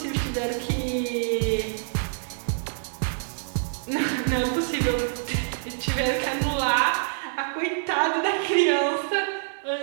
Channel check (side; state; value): left; silent; digital silence